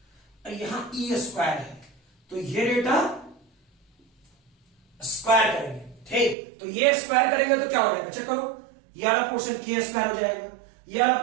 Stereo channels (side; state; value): left; drops out; at 6.4 s